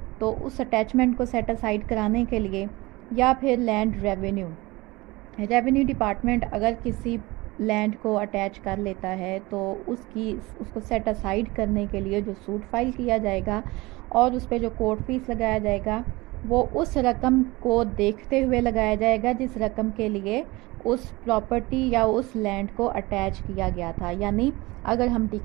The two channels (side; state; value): left; quieter; 21.9 dB